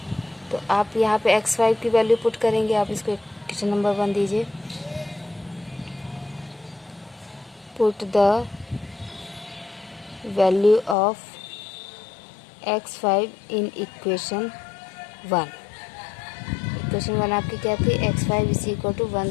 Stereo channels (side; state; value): right; drops out; at 11.0 s